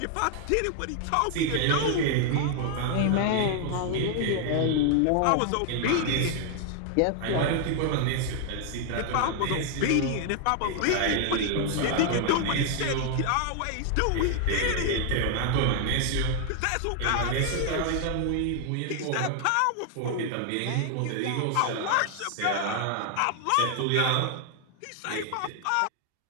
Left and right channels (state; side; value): different; both; correlation 0.00